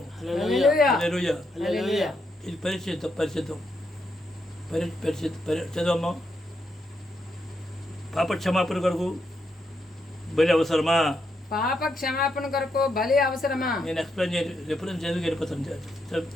హల్లెలూయా. ఇది పరిశుద్ధం చదవమ్మా. పాప క్షమాపణ కొరకు బలి అవసరమా? పాప క్షమాపణ కొరకు బలి అవసరమా? నేను ఎక్స్ప్లెయిన్ చేయాలి. ఎప్పుడైనా చదివి వెళ్ళిపోతాను.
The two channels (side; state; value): both; normal; correlation 0.80